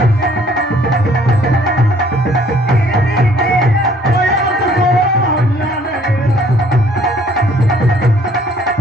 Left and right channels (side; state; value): both; normal; correlation 0.59